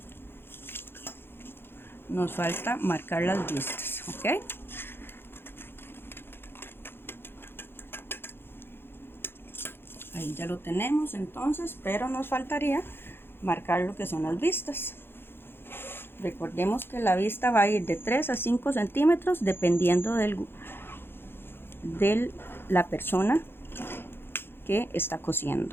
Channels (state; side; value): late; right; 0.11 ms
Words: Nos falta marcar las vistas. Ok, ahí ya lo tenemos entonces, pero nos faltaría marcar lo que son las vistas. Recordemos que la vista va a ir de 3 a 5 centímetros dependiendo de la persona que está